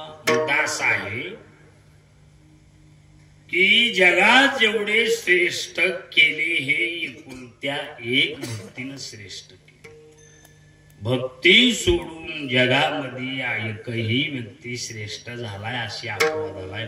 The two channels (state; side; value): identical; both; correlation 1.00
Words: दास आहे की जगात जेवढे श्रेष्ठ केले हे एकुलत्या एक भक्तीनं श्रेष्ठ केले. भक्ती सोडून जगामध्ये एकही व्यक्ती श्रेष्ठ झालाय अशी अपवादालाय